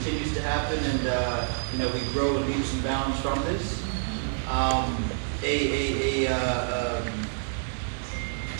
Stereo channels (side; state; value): left; silent; digital silence